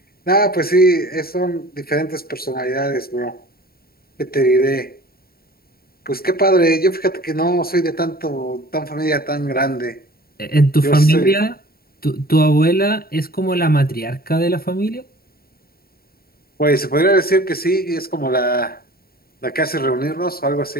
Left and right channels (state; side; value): late; right; 0.44 ms